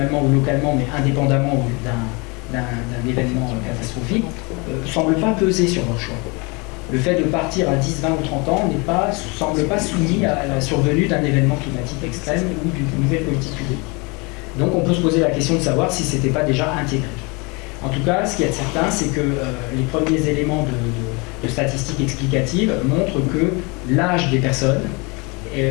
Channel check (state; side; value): quieter; right; 28.8 dB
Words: ou localement, mais indépendamment d'un événement catastrophique, ne semblent pas peser sur leur choix. Le fait de partir à 10, 20 ou 30 ans ne semble pas soumis à la survenue d'un événement climatique extrême ou d'une nouvelle politique publique. Donc on peut se poser la question de savoir si ce n'était pas déjà intégré. En tout cas, ce qui est certain, c'est que les premiers éléments de statistiques explicatives montrent que l'âge des personnes,